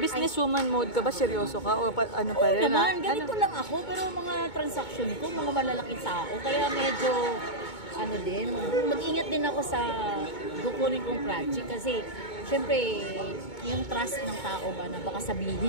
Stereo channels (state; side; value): late; right; 2.2 ms